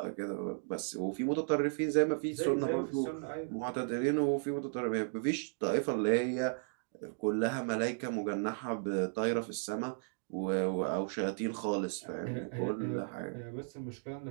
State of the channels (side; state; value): left; silent; digital silence